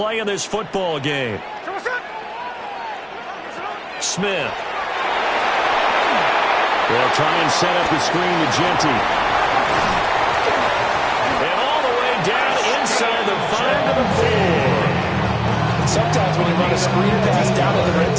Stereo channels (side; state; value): both; identical; correlation 1.00